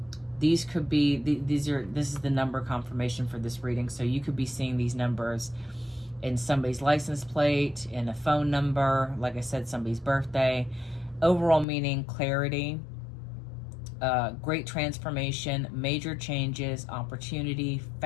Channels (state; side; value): drops out; right; at 11.7 s